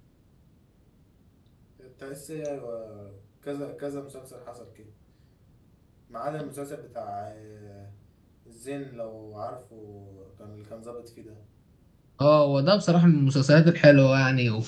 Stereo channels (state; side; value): identical; both; correlation 1.00